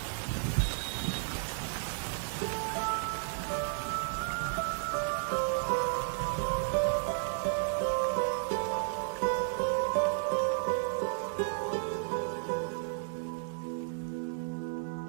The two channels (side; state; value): left; silent; digital silence